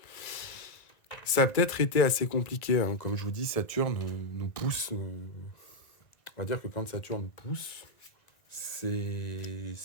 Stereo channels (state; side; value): late; right; 1.9 ms